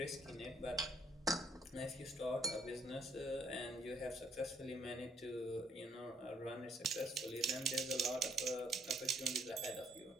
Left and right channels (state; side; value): normal; both; correlation 0.67